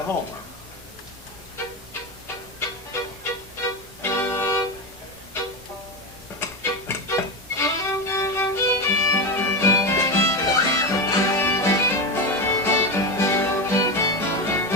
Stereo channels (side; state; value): both; normal; correlation 0.16